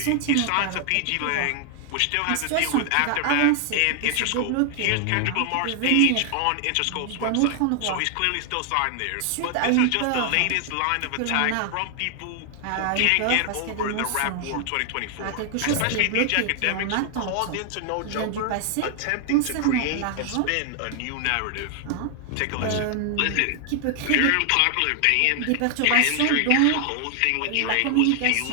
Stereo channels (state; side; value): different; both; correlation 0.00